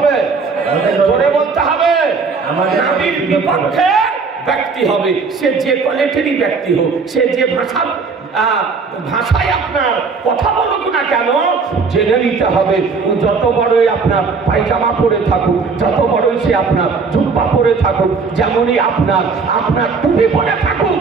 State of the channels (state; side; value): quieter; left; 4.8 dB